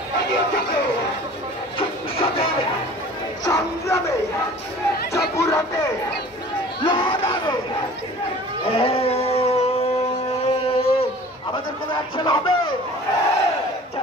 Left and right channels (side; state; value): both; normal; correlation 0.45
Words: আমাদের কোনো অ্যাকশন হবে?